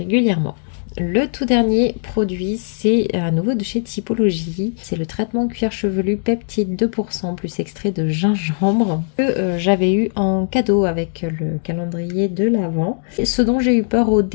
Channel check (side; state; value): right; silent; digital silence